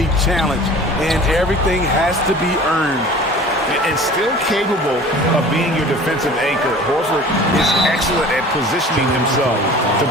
challenged and everything has to be earned. And still capable of being your defensive anchor, Horford is excellent at positioning himself to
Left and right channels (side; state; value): both; normal; correlation 0.43